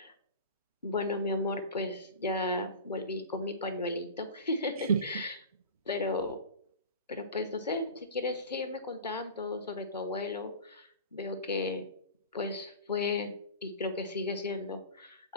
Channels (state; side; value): inverted; both; correlation -0.33